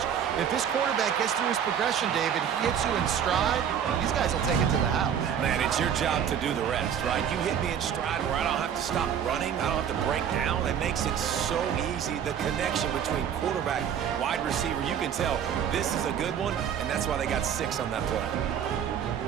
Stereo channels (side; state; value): left; quieter; 8.6 dB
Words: If this quarterback gets through his progression, David, he hits you in stride, these guys will take it to the house. Man, it's your job to do the rest, right? You hit me in stride where I don't have to stop running. I don't have to break down. It makes it so easy. The connection between quarterback, wide receiver, you can tell this is a good one, and that's why they got 6 on that play.